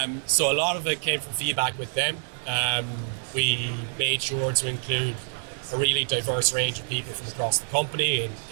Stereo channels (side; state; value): left; silent; digital silence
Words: So a lot of it came from feedback with them. We made sure to include a really diverse range of people from across the company